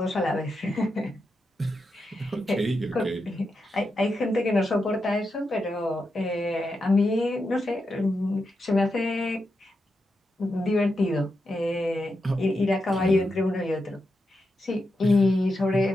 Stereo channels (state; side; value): normal; both; correlation 0.87